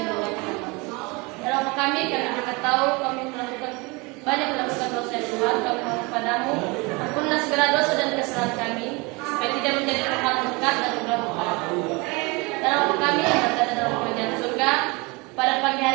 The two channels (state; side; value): quieter; left; 26.8 dB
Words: berdoa. Dalam kami juga tahu kami banyak melakukan dosa Tuhan, kami mohon kepadamu ampunlah segala dosa dan kesalahan kami supaya tidak menjadi tempat berkat dan berdoa. Dalam kami yang berada dalam kerajaan surga, pada pagi